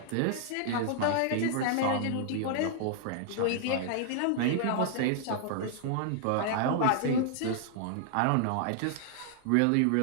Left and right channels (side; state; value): both; different; correlation 0.00